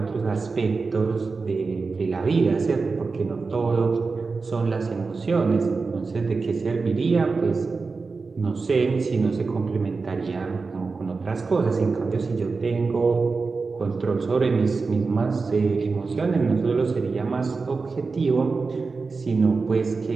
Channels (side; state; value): left; quieter; 4.3 dB